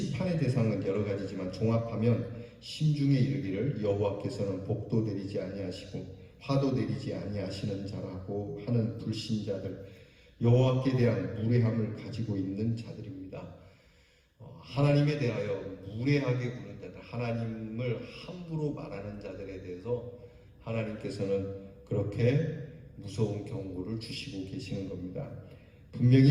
대상은 여러 가지지만 종합하면 심중에 이르기를 여호와께서는 복도 내리지 아니하시고 화도 내리지 아니하시는 자라고 하는 불신자들, 여호와께 대한 무례함을 가지고 있는 자들입니다. 하나님에 대하여 무례하게 구는 자들, 하나님을 함부로 말하는 자들에 대해서 하나님께서는 그렇게 무서운 경고를 주시고 계시는 겁니다.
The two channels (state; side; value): identical; both; correlation 1.00